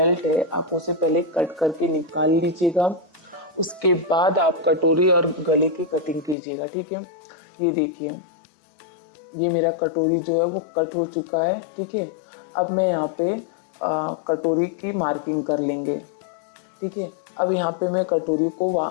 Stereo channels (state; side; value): drops out; right; at 6.4 s